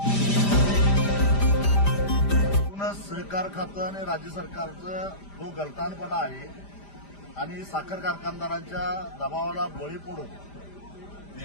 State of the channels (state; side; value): late; right; 5.0 ms